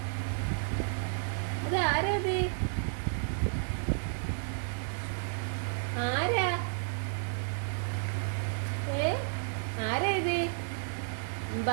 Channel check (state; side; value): silent; left; digital silence